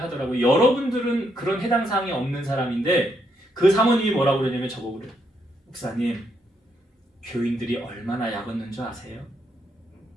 하더라고요. 여러분들은 그런 해당 사항이 없는 사람인데 그 사모님이 뭐라고 그러냐면 저보고 그래요. 목사님, 교인들이 얼마나 약 얻는 줄 아세요?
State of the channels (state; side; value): normal; both; correlation 0.77